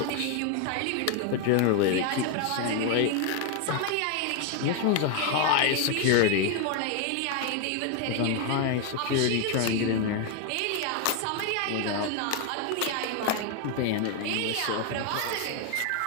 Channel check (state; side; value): different; both; correlation 0.01